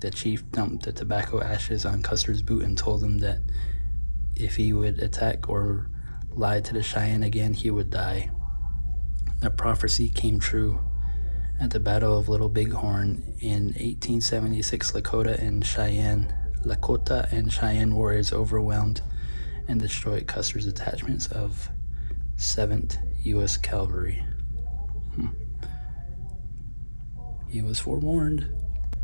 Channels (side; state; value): both; inverted; correlation -1.00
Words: chief dumped the tobacco ashes on Custer's boot and told him that if he would attack or lie to the Cheyenne again, he would die. The prophecy came true. At the Battle of Little Bighorn in 1876, Lakota and Cheyenne warriors overwhelmed and destroyed Custer's detachments of 7th U.S. Cavalry. He was forewarned.